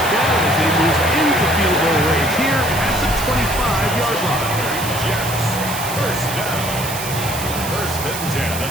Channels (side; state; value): right; noise; hiss, 8 dB below the sound